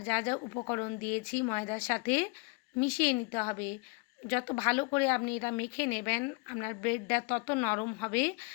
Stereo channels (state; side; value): quieter; right; 30.1 dB